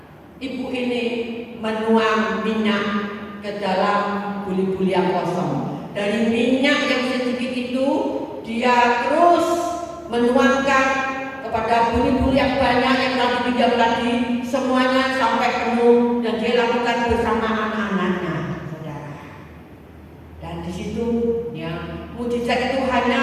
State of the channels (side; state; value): both; identical; correlation 1.00